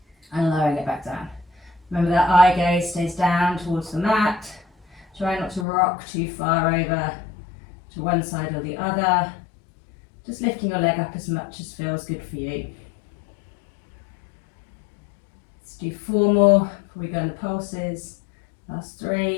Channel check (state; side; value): drops out; right; at 5.7 s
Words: and lowering it back down. Remember that eye gaze stays down towards the mat. Try not to rock too far over to one side or the other. Just lifting your leg up as much as feels good for you. Let's do 4 more before we go on the pulses. Last